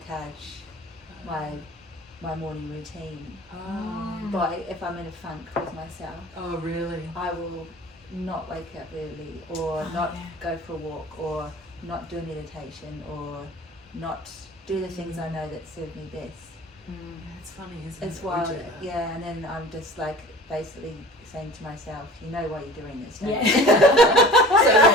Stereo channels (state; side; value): normal; both; correlation 0.42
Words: my morning routine. But if I'm in a funk with myself, Oh, really? I will not wake up early, or not go for a walk, or not do meditation, or not do the things I know that serve me best. It's funny, isn't it? It's We wild, do that. yeah. And then I'm just like basically saying to myself, you know why you're doing this, don't Yeah. you? So,